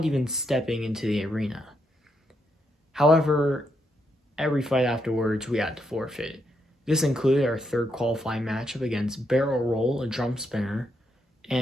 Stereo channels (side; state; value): both; normal; correlation 0.79